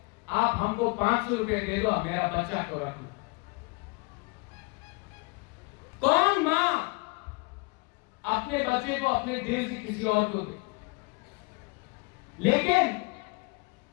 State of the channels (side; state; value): right; quieter; 28.6 dB